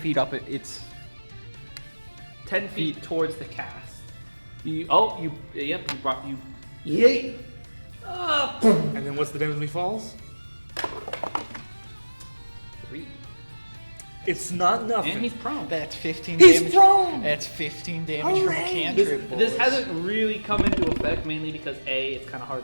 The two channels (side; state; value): both; inverted; correlation -1.00